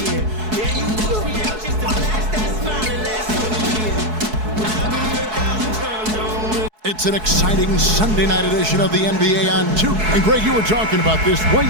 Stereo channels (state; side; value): late; left; 4.7 ms